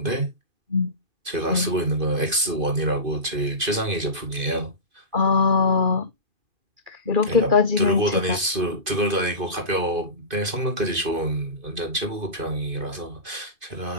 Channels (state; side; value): late; left; 2.5 ms